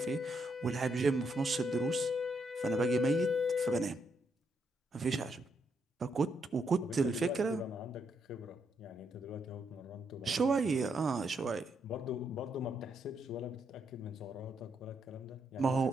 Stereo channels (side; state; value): both; normal; correlation 0.77